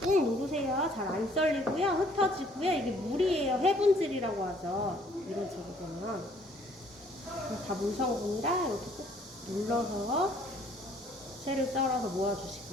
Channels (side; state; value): both; normal; correlation 0.61